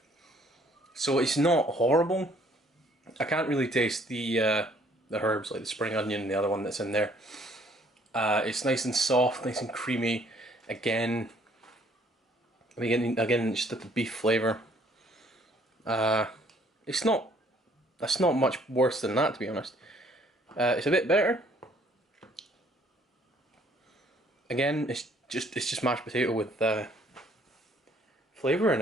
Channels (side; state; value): both; normal; correlation 0.62